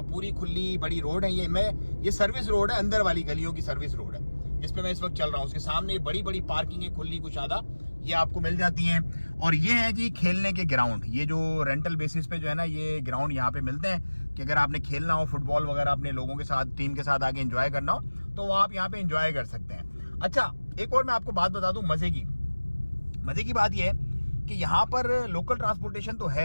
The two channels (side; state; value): both; inverted; correlation -1.00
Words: पूरी खुली बड़ी रोड है। ये सर्विस रोड है, अंदर वाली गलियों की सर्विस रोड है जिसपे मैं इस वक्त चल रहा हूँ। उसके सामने बड़ी बड़ी पार्किंग है, खुली कुशादा, ये आपको मिल जाती हैं। और ये है जी खेलने के ग्राउंड, ये जो रेंटल बेसिस पे जो है ना ये ग्राउंड यहाँ पे मिलते हैं, कि अगर आपने खेलना हो फुटबॉल वगैरह अपने लोगों के साथ, टीम के साथ आके एंजॉय करना हो, तो वो आप यहाँ पे एंजॉय कर सकते हैं। अच्छा, एक और मैं आपको बात बता दूं मजे की बात यह है कि यहाँ पर लोकल ट्रांसपोर्टेशन तो